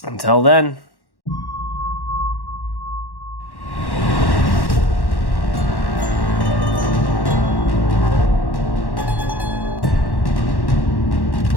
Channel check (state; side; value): late; right; 1.1 ms